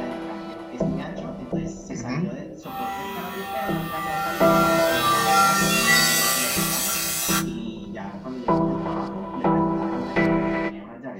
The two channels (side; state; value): both; identical; correlation 1.00